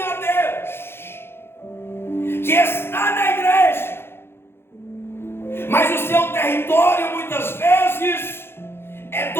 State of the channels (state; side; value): late; right; 0.11 ms